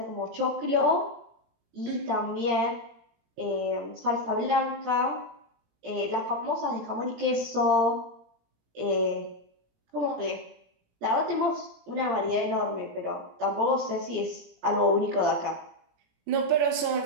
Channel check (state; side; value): late; left; 17 ms